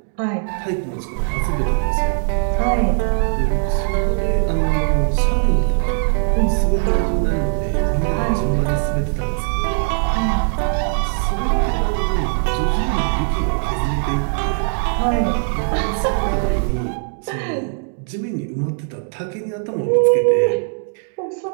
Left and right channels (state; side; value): silent; left; 65 dB below the other